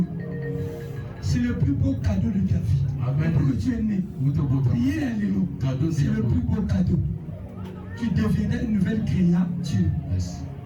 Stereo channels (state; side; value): identical; both; correlation 1.00